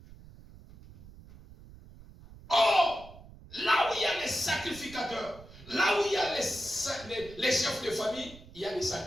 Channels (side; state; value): right; noise; rumble, 19 dB below the sound